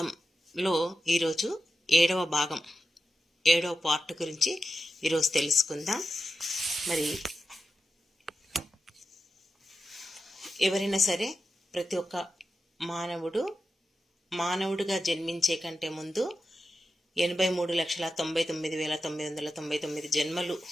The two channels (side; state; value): both; normal; correlation 0.91